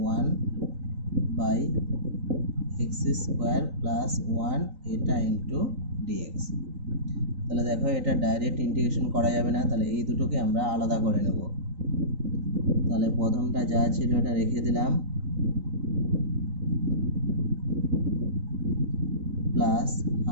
1 by x square plus 1 এটা ইন্টু ডিএক্স। তাহলে দেখো এটা ডাইরেক্ট ইন্টিগ্রেশন করা যাবে না, তাহলে এই দুটোকে আমরা আলাদা করে নেব। তাহলে প্রথমটা যা ছিল এটা রেখে দিলাম, plus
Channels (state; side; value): late; left; 3.9 ms